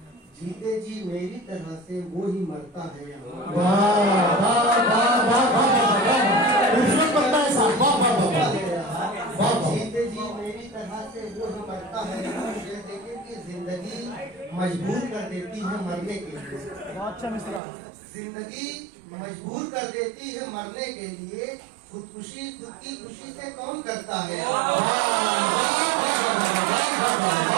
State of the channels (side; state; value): left; drops out; at 17.6 s